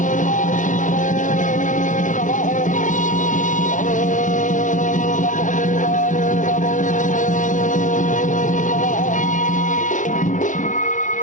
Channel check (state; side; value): late; right; 0.37 ms